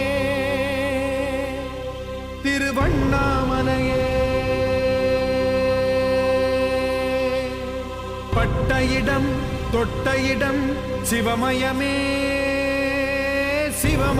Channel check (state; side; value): identical; both; correlation 1.00